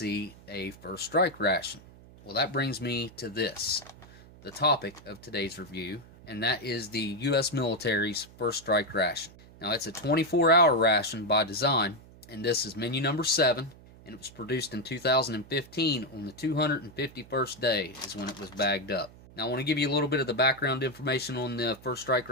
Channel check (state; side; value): noise; right; hum, 21 dB below the sound